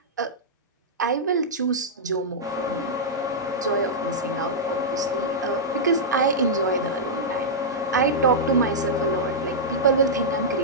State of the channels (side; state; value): both; normal; correlation -0.09